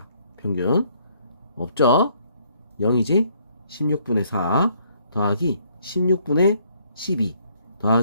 평균. 없죠? 0이지? 16분의 4 더하기 16분의 12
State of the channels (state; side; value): inverted; both; correlation -0.66